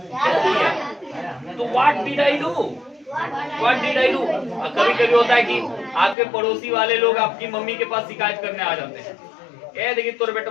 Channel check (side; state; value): right; drops out; at 6.2 s